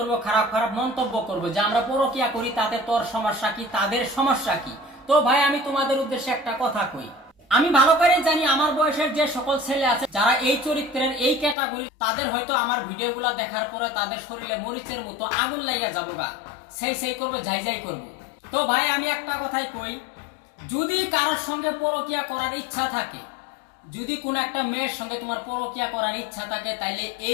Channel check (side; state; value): right; drops out; at 11.6 s